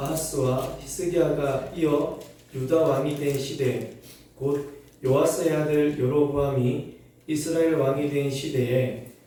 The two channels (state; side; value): identical; both; correlation 1.00